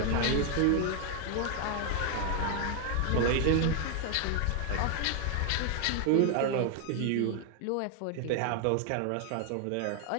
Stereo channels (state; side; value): different; both; correlation 0.00